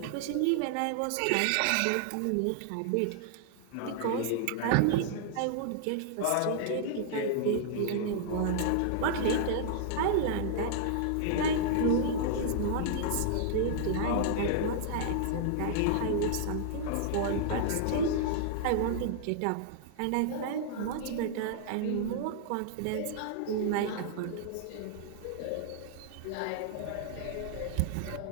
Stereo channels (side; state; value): both; different; correlation -0.01